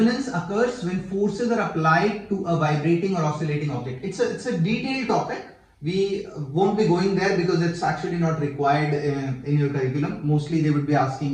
occurs when forces are applied to a vibrating or oscillating object. It's a detailed topic. We won't be going there because it's actually not required in your curriculum. Mostly they would be asking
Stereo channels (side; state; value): both; identical; correlation 1.00